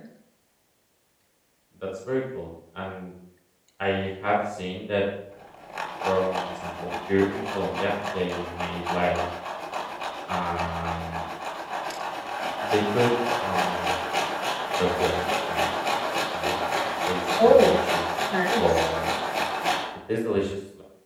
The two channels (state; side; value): identical; both; correlation 1.00